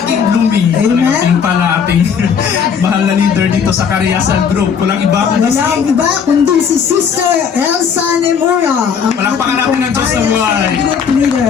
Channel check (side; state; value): right; quieter; 6.9 dB